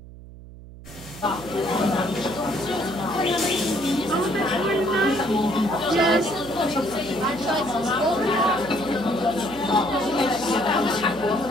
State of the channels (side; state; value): right; noise; hum, 17 dB below the sound